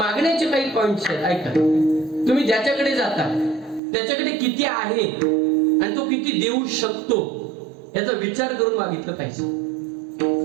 काही पॉइंट्स आहेत. ऐका, तुम्ही ज्याच्याकडे जाता त्याच्याकडे किती आहे आणि तो किती देऊ शकतो याचा विचार करून मागितलं पाहिजे.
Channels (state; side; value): drops out; left; at 3.8 s